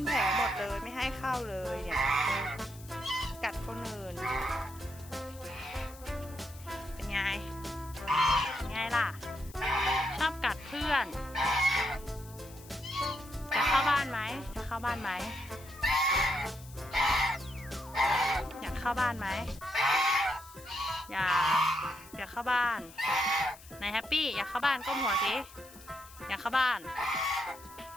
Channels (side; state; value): left; noise; hiss, 20 dB below the sound